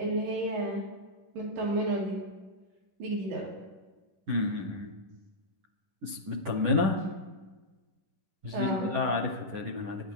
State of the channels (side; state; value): left; late; 10 ms